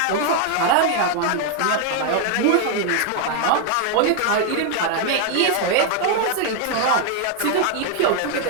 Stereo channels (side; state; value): both; different; correlation 0.00